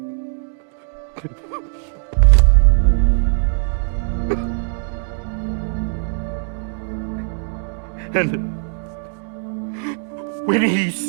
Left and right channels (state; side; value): silent; left; digital silence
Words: And when he